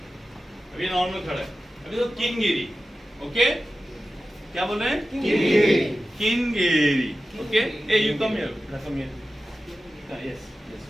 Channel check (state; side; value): normal; both; correlation 0.94